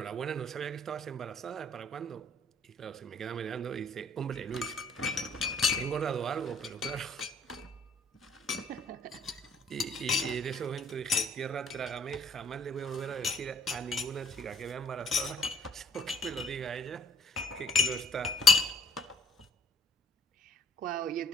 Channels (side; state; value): both; normal; correlation 0.59